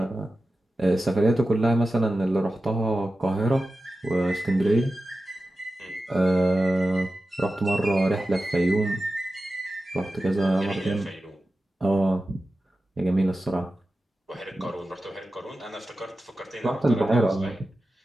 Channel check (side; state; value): both; normal; correlation 0.93